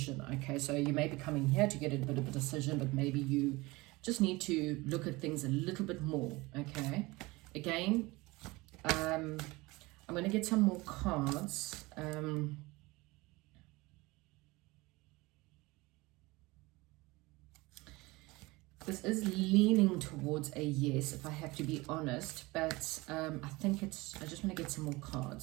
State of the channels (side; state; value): left; quieter; 22.3 dB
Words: okay? So you may be coming here to get a bit of a decision, but maybe you just need to look at things a little bit more, okay? Again, I'm going to get some more cards. This is leaning towards a yes, if I have to be honest, but I think I just want to get some more